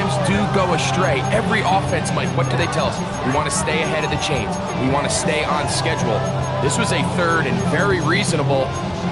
do go astray. Every offense, Mike, what do they tell us? We want to stay ahead of the chains. We want to stay on schedule. This was a 3rd and very reasonable.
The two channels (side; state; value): right; noise; rumble, 23 dB below the sound